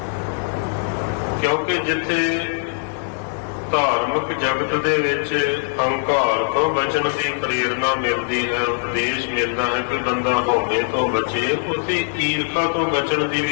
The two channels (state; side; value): silent; right; digital silence